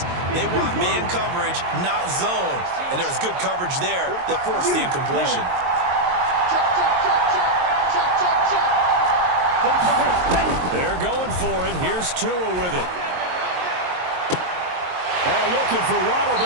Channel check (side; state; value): left; late; 22 ms